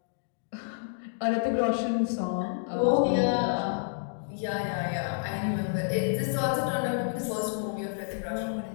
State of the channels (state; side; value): silent; right; digital silence